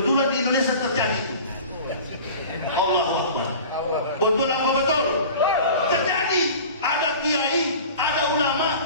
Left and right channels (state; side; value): inverted; both; correlation -0.40